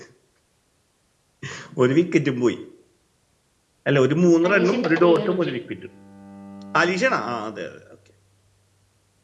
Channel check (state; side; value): identical; both; correlation 1.00